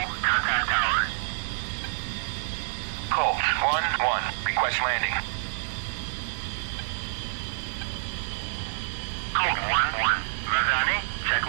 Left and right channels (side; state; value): left; silent; 60 dB below the other